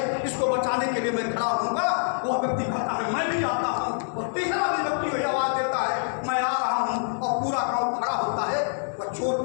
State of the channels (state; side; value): silent; right; digital silence